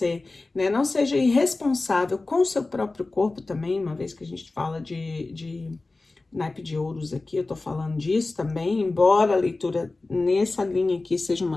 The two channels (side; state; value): right; quieter; 3.3 dB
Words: né? Não seja irresponsável com o seu próprio corpo também, uma vez que a gente fala de naipe de ouros aqui, eu tô falando disso também, embora a leitura nessa linha aqui seja